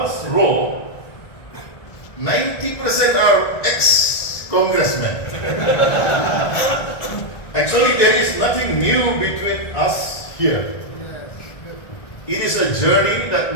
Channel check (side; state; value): right; late; 1.6 ms